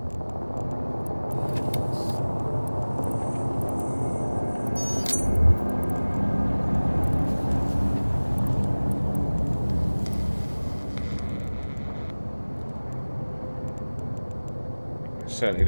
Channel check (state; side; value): inverted; both; correlation -1.00